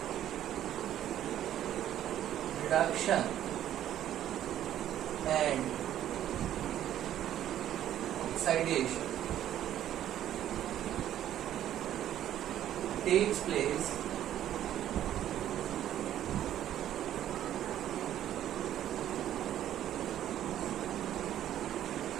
reduction and oxidation takes place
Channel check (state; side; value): quieter; left; 11.6 dB